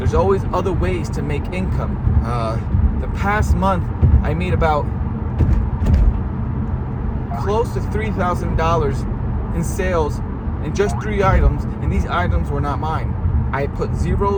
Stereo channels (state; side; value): identical; both; correlation 1.00